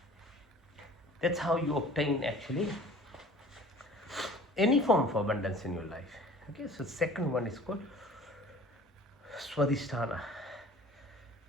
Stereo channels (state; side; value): normal; both; correlation 0.47